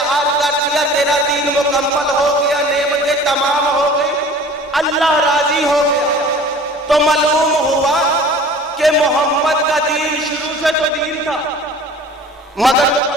कर दिया, तेरा दीन मुकम्मल हो गया, नेमतें तमाम हो गई, अल्लाह राजी हो गया। तो मालूम हुआ कि मोहम्मद का दीन शुरू से तो दीन था, मगर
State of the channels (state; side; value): normal; both; correlation 0.45